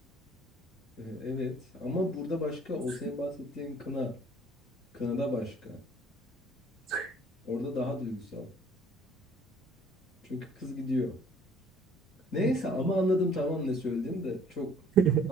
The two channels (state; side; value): normal; both; correlation 0.56